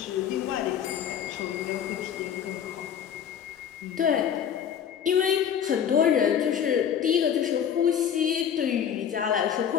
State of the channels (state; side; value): quieter; right; 8.6 dB